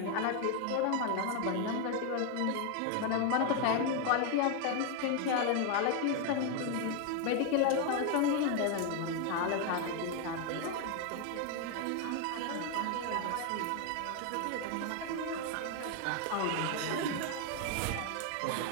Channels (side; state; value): both; different; correlation 0.01